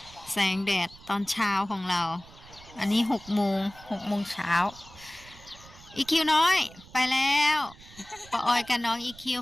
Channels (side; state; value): right; noise; rumble, 21 dB below the sound